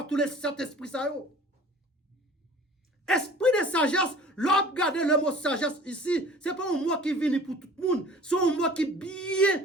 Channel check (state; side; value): normal; both; correlation 0.46